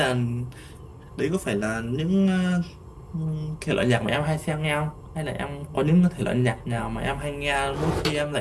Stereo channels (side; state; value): both; identical; correlation 1.00